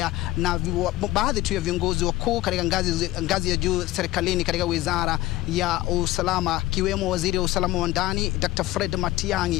na baadhi tu ya viongozi wakuu katika ngazi ya juu serikalini katika wizara ya usalama, kiwemo waziri wa usalama wa ndani Dr. Fred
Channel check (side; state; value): right; quieter; 16.9 dB